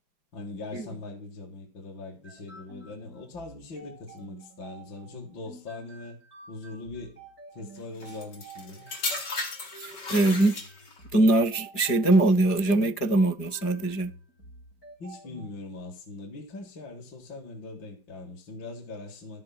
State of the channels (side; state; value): right; late; 4.9 ms